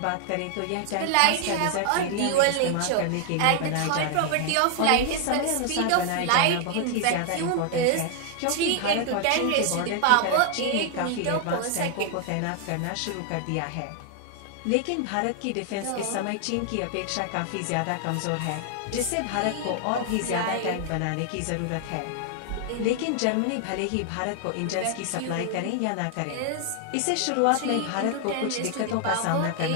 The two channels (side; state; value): both; different; correlation 0.00